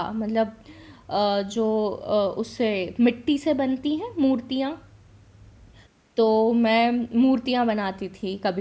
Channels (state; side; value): identical; both; correlation 1.00